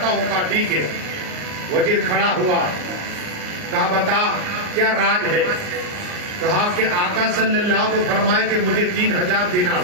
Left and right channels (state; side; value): late; left; 39 ms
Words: ہوں. کہا ٹھیک ہے. وزیر کھڑا ہوا, کہا بتا کیا راز ہے؟ کہا کہ آقا صلی اللہ کو فرمائے کہ مجھے 3000 دینار